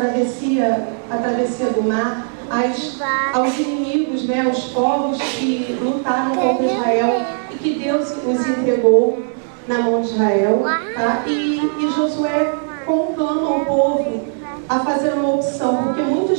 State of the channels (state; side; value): silent; left; digital silence